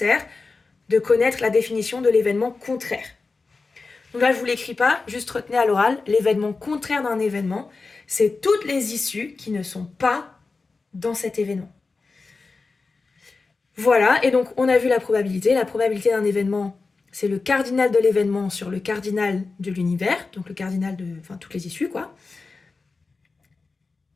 de connaître la définition de l'événement contraire. Donc là, je vous l'écris pas, juste retenez à l'oral, l'événement contraire d'un événement, c'est toutes les issues qui ne sont pas dans cet événement. Voilà, et donc on a vu la probabilité. La probabilité d'un événement, c'est le cardinal de l'événement sur le cardinal de l'univers, donc le cardinal de, enfin, toutes les issues, quoi.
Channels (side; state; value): right; quieter; 4.0 dB